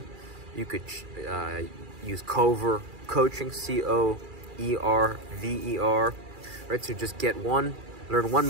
You could use Cover Coaching, COERVER. Right, so just learn one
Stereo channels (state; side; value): late; left; 2.4 ms